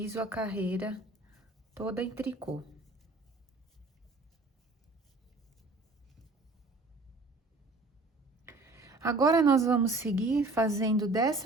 a carreira toda em tricô. Agora, nós vamos seguir fazendo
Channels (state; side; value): quieter; left; 3.2 dB